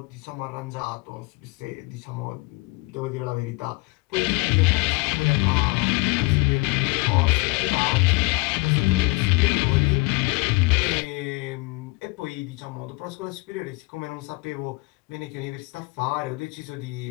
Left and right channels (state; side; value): quieter; right; 26.1 dB